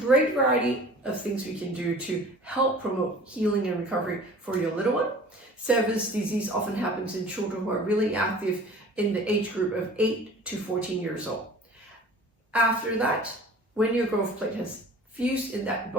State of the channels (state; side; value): normal; both; correlation 0.45